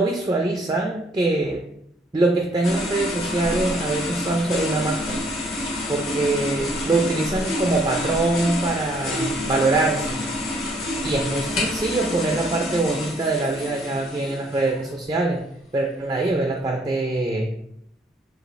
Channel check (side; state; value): both; normal; correlation 0.64